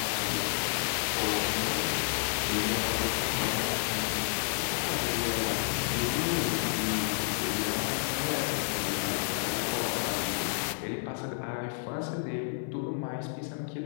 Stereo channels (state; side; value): silent; right; 57 dB below the other